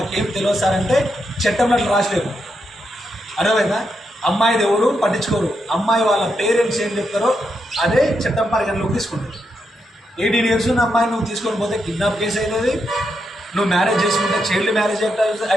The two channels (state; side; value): normal; both; correlation 0.83